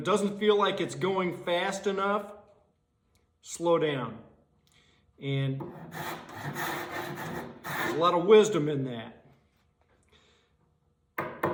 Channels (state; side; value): identical; both; correlation 1.00